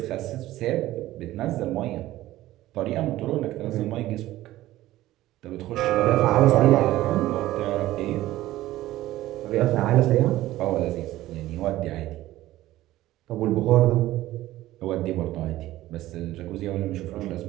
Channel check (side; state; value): left; quieter; 15.6 dB